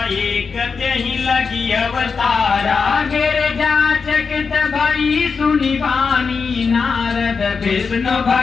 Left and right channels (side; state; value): right; quieter; 5.3 dB